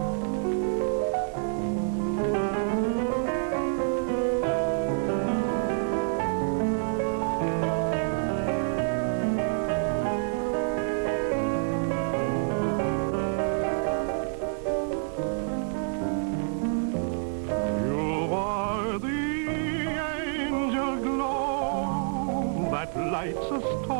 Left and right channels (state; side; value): silent; left; 60 dB below the other